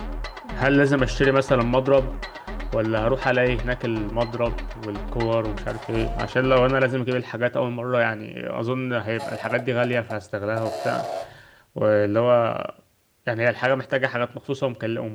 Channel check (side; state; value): both; identical; correlation 1.00